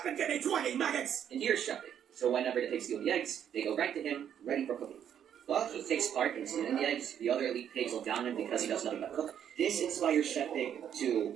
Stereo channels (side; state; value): left; quieter; 9.2 dB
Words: and give me 20 maggots! And here's Chef Pig. So whenever the pigs steal the eggs, they go right to him, ready for cooking. Well, he takes part in stealing the eggs. The other elite pigs look down on him because he does nothing but cook. This inspires Chef Pig to